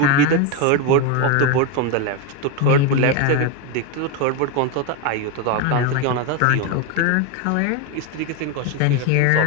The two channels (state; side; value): different; both; correlation 0.02